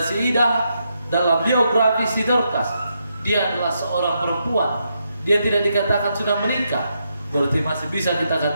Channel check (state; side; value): inverted; both; correlation -0.81